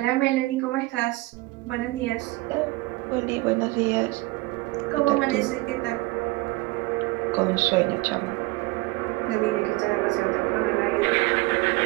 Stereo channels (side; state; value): left; quieter; 21.9 dB